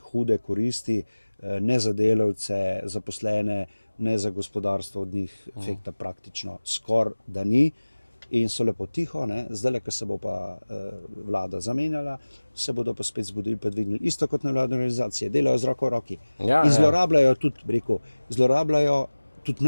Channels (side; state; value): both; inverted; correlation -1.00